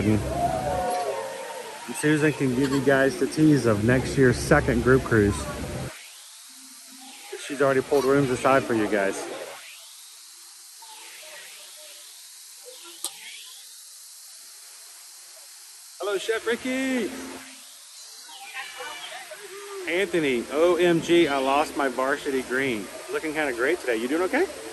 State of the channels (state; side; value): identical; both; correlation 1.00